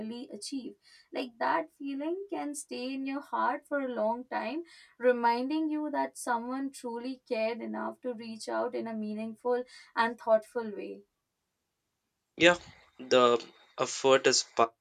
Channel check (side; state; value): both; identical; correlation 1.00